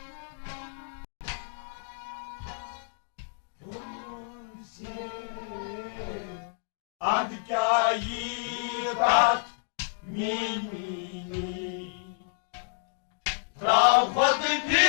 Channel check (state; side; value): silent; right; digital silence